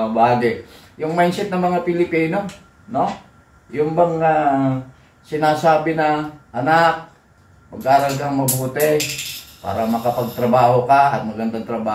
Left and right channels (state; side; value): identical; both; correlation 1.00